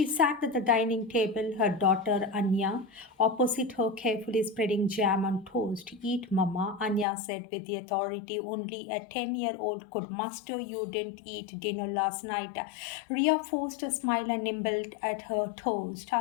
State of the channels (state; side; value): drops out; right; at 7.1 s